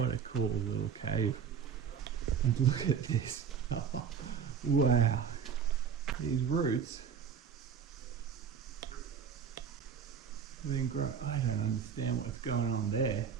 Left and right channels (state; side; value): quieter; left; 7.2 dB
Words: a cool little cave. And look at this. Wow. These roots have been growing. I don't understand what's going on there.